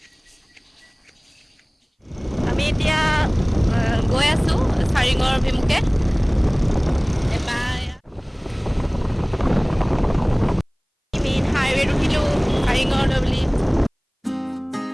আমি এতিয়া গৈ আছোঁ চাৰিঙৰ অভিমুখে। মেইন হাইৱেত উঠিলোঁ চাৰিঙলৈ বুলি।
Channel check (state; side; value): identical; both; correlation 1.00